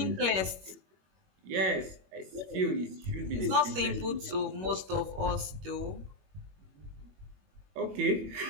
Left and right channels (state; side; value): late; left; 21 ms